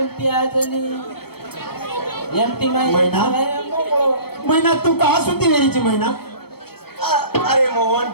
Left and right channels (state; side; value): late; right; 0.96 ms